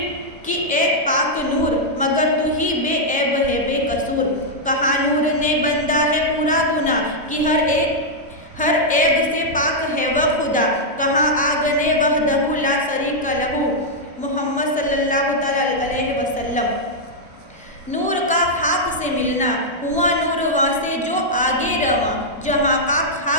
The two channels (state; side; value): normal; both; correlation -0.05